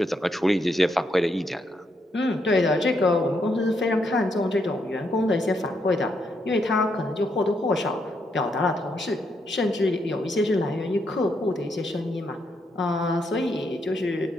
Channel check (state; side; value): normal; both; correlation 0.78